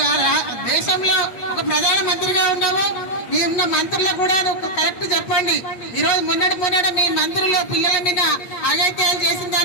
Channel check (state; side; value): late; right; 8.3 ms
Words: దేశంలో ఒక ప్రధాన మంత్రిగా ఉన్నావు. మీ ఉన్న మంత్రులకు కూడా నువ్వు కరెక్ట్ చెప్పండి. ఈ రోజు మొన్నటి మీ మంత్రులు పిల్లల మీద అఘాయిత్యాలు చేసిన